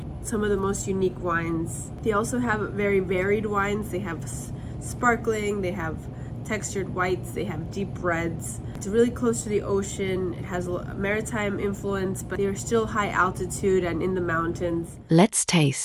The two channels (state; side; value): identical; both; correlation 1.00